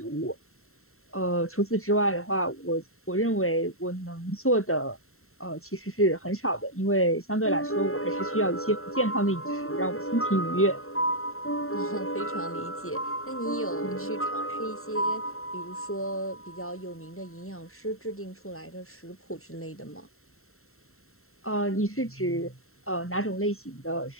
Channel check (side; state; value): right; late; 0.63 ms